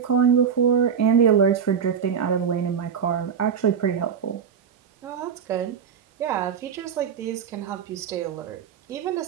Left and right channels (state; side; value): quieter; left; 7.4 dB